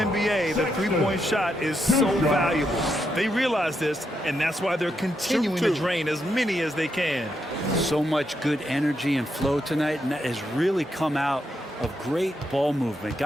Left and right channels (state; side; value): normal; both; correlation 0.81